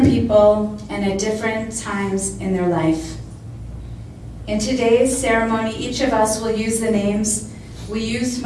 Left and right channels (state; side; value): identical; both; correlation 1.00